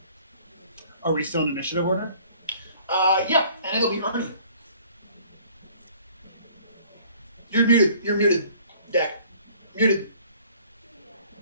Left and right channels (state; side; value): inverted; both; correlation -0.55